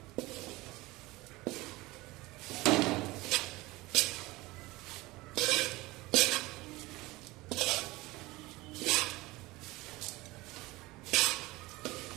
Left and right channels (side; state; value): left; quieter; 20.7 dB